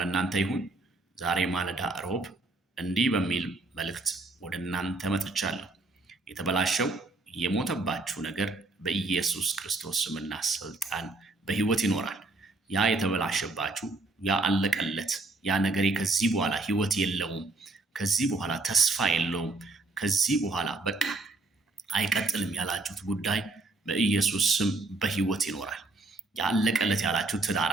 ይሁን። ዛሬ ማለዳ ሮብ እንዲህ በሚል መልእክት ወደ እናንተ መጥቻለሁ። የተበላሸው የሞተባችሁ ነገር በኢየሱስ ክርስቶስ ስምና ስልጣን በህይወት ይኖራል። ያ የተበላሸባችሁ ያ አለቀለት ያ ነገሬ ከዚህ በኋላ ህይወት የለውም፣ ከዚህ በኋላ ተስፋ የለውም፣ ከዚህ በኋላ በቃ አይቀጥልም ያላችሁት ጉዳይ በኢየሱስ ስም በህይወት ይኖራል። ያለቀለት ያላችሁ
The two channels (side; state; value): left; quieter; 3.2 dB